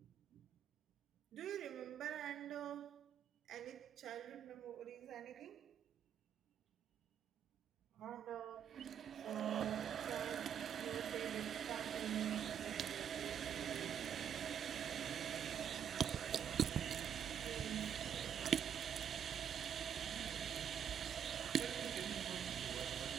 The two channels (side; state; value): left; quieter; 8.7 dB